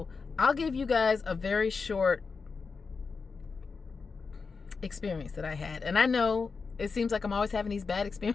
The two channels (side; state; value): right; quieter; 4.9 dB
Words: I'll give you guys a very short experience that I had. And I know it seems like I'm always having these bad